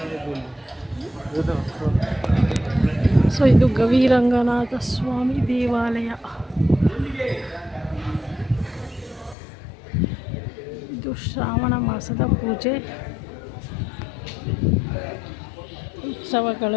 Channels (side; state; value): right; drops out; at 9.3 s